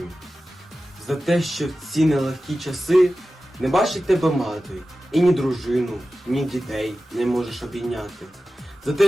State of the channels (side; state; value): both; normal; correlation 0.94